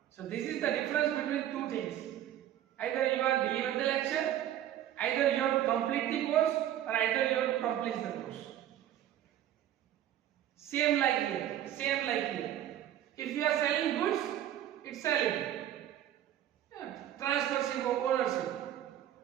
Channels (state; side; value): quieter; left; 11.7 dB